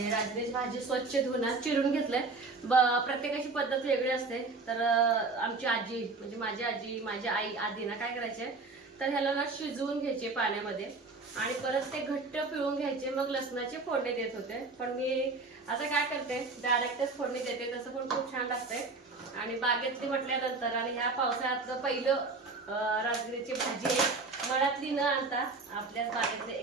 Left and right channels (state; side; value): quieter; left; 3.8 dB